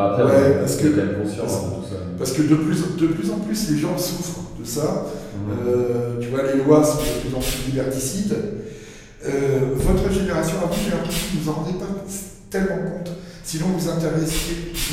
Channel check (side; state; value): both; identical; correlation 1.00